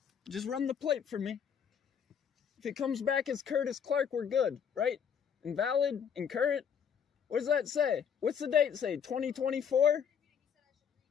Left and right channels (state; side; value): quieter; right; 7.6 dB